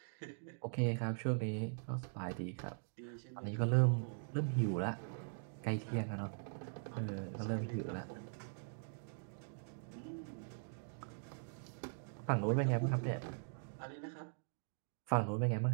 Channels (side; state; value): left; silent; digital silence